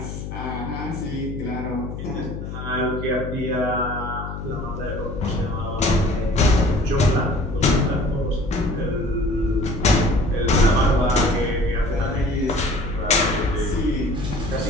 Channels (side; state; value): left; noise; hum, 7 dB below the sound